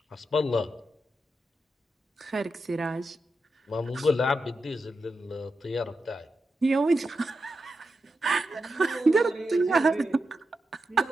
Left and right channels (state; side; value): normal; both; correlation 0.88